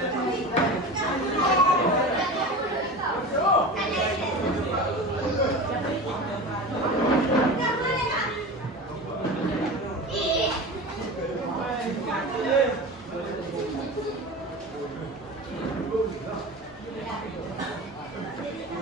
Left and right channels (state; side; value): normal; both; correlation 0.31